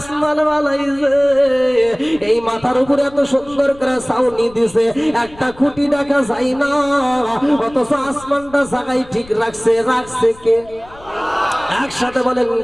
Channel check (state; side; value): noise; left; rumble, 22 dB below the sound